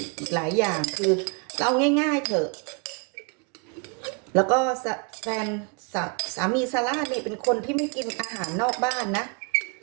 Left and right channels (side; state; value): left; quieter; 34.7 dB